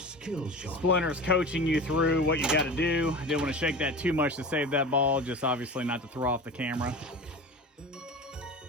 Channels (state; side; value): normal; both; correlation 0.32